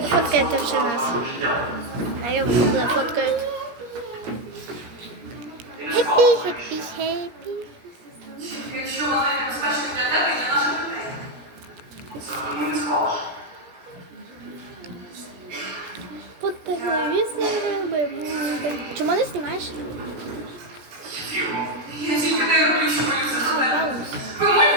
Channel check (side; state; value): left; late; 17 ms